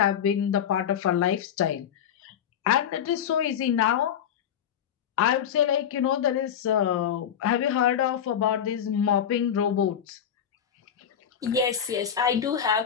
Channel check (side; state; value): right; quieter; 8.9 dB